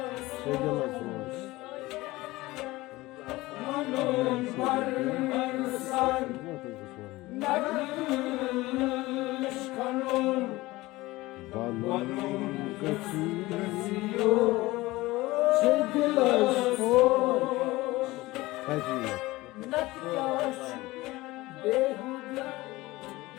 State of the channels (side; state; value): right; quieter; 19.6 dB